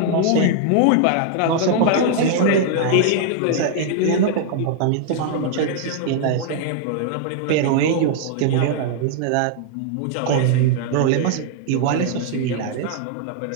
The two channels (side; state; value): both; different; correlation 0.00